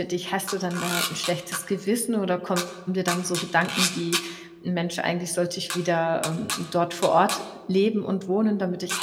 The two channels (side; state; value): both; identical; correlation 1.00